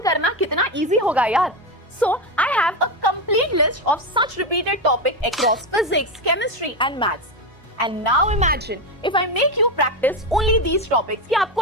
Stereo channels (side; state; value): both; normal; correlation 0.13